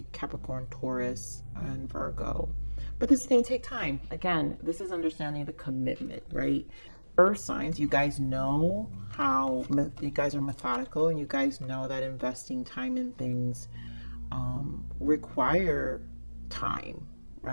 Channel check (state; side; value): inverted; both; correlation -1.00